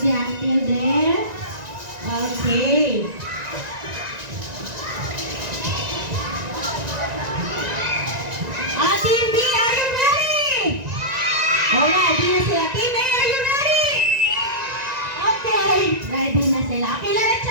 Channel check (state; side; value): late; left; 1.9 ms